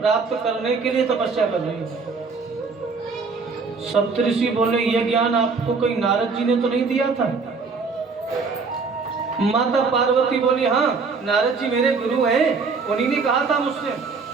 प्राप्त करने के लिए तपस्या कर रही हूं। सप्तऋषि बोले ये ज्ञान आपको कोई नारद जी ने तो नहीं दिया था? माता पार्वती बोली हाँ नारद जी मेरे गुरु हैं, उन्हीं ने कहा था मुझसे।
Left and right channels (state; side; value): quieter; left; 4.7 dB